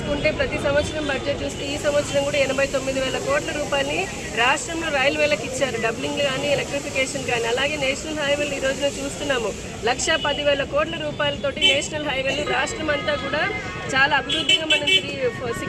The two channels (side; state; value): both; identical; correlation 1.00